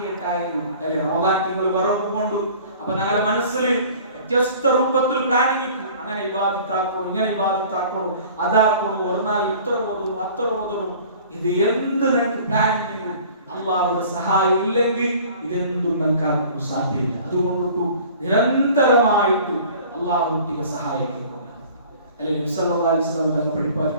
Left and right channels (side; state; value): both; inverted; correlation -0.48